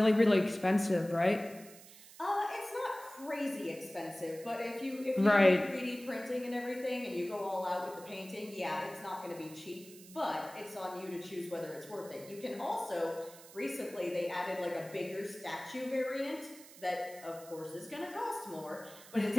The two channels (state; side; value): noise; right; hiss, 19 dB below the sound